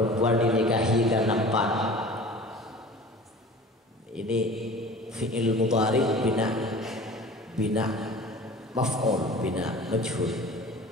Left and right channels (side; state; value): both; normal; correlation 0.41